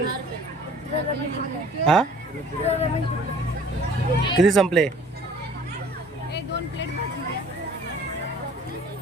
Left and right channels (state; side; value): normal; both; correlation 0.51